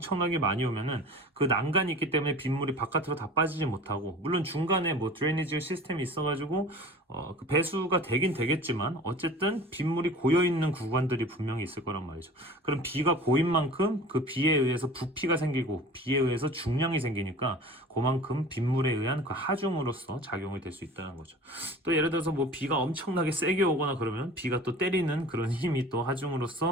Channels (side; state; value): both; normal; correlation 0.41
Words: 많이 오면은 그 난간이 있기 때문에 빗물이 바깥으로 다 빠지지 못하고, 물론 중간에 뭐 드레이니지 시스템이 있어가지고 그 배수가 되긴 되겠지만 어쨌든 빗물이 고여 있는 구간들이 분명히 있을 거란 말이죠. 그럼 비가 고인 만큼 그 비에 의해서 부피가 생기고 비에 의해서 중량이 생기니까 그만큼 빗물에 의한 그 하중으로서 작용이 될 수 있다는 거죠. 또 예를 들어서 뭐 비가 엄청나게 세게 오거나 그러면 비가 또 때리는 그런 힘이 또